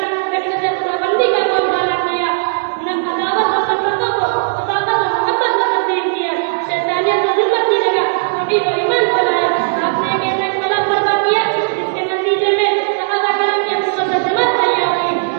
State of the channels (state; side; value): silent; left; 59 dB below the other